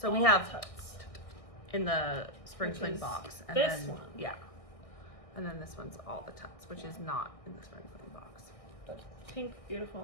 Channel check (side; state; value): right; late; 1.6 ms